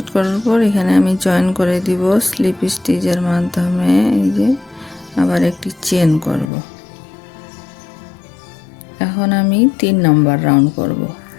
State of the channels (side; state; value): right; drops out; at 6.5 s